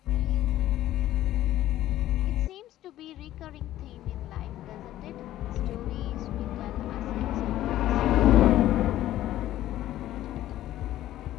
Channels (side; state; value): right; quieter; 13.8 dB